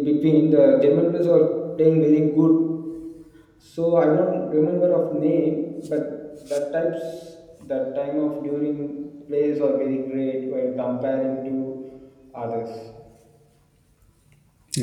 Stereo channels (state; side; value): identical; both; correlation 1.00